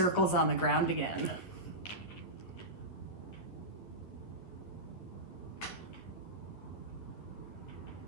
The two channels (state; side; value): late; right; 11 ms